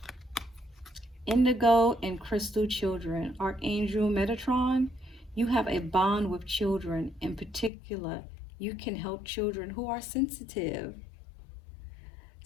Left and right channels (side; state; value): right; drops out; at 7.7 s